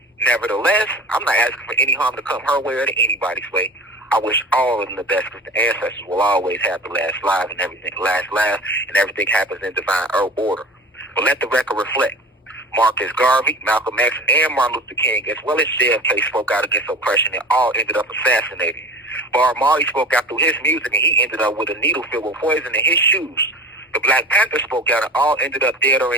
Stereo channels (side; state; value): both; normal; correlation 0.36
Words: Nevertheless, I'm not asking for any harm to come her way or to anybody's way. I wish all of them the best because the ancestors will always have the last laugh and everything happens in divine order. But let the record reflect. Marcus Garvey, Malcolm X, and Martin Luther King, as well as JFK, spoke out against oppression and all ended up assassinated. Bob Marley spoke out through his music and he ended up with a needle filled with poison in his shoes. The Black Panther spoke out and all ended up dead or